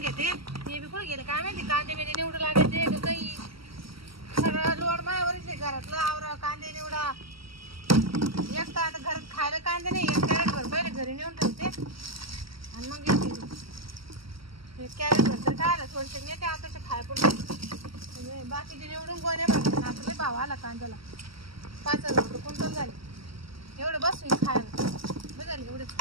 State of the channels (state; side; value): late; left; 0.75 ms